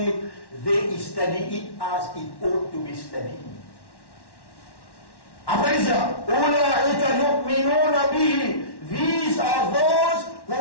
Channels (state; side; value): late; right; 1.1 ms